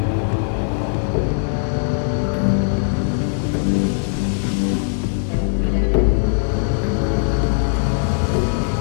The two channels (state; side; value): silent; right; 66 dB below the other